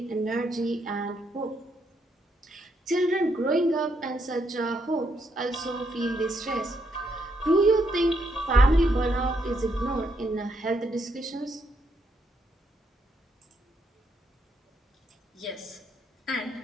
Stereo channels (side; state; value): both; normal; correlation 0.76